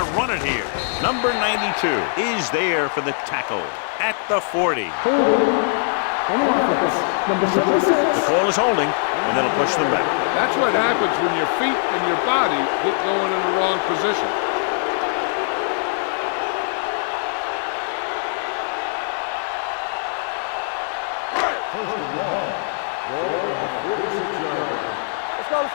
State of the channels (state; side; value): silent; right; 64 dB below the other